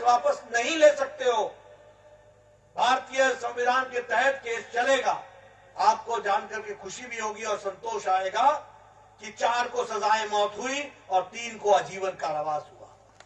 वापस नहीं ले सकते हो, भारतीय संविधान के तहत केस चलेगा। आपको जानकर के खुशी भी होगी और संतोष आएगा कि 4 को सजाए मौत हुई और 3 को आजीवन कारावास हुआ,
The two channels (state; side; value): identical; both; correlation 1.00